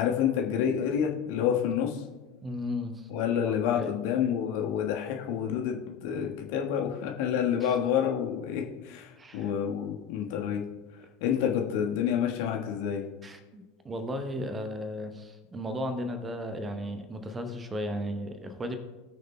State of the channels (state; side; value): quieter; right; 7.0 dB